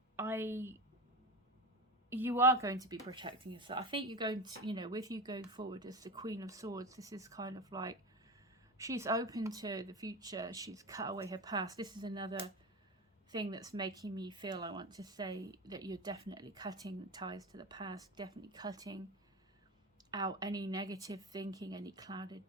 You are going to be protecting yourself. I think you're going to, you know, with you going forward as the Queen of Swords, this is kind of like she's open to the future. She's cut away her past. This is another thing that's making me feel, I want to say, that you're definitely cutting the ties to the past, definitely cutting out any negative thinking, any clouded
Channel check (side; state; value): both; normal; correlation 0.24